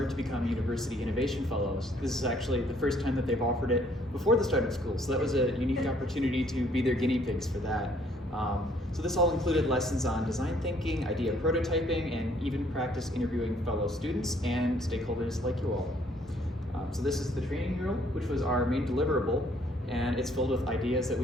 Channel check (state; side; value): normal; both; correlation 0.63